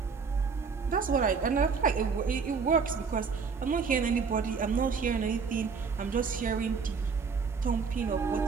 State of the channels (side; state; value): left; quieter; 5.4 dB